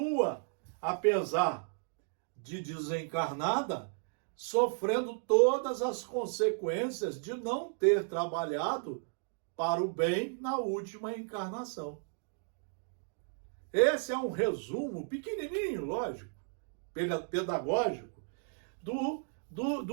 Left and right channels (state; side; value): silent; left; digital silence